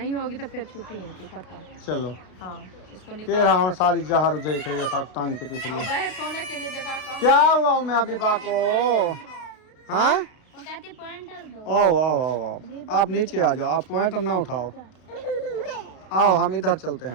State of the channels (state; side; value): late; right; 32 ms